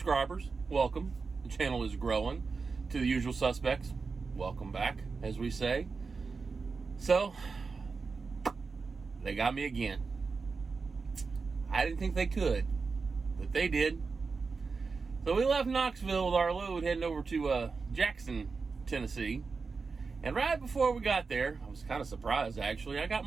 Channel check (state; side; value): quieter; left; 4.6 dB